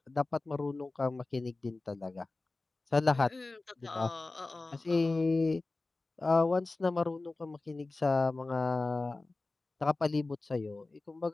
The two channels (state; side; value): quieter; right; 3.3 dB